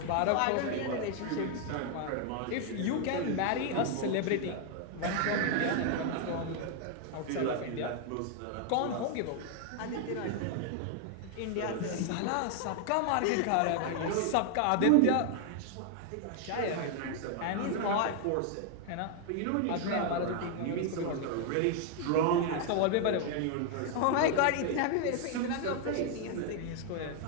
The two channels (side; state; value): both; different; correlation 0.00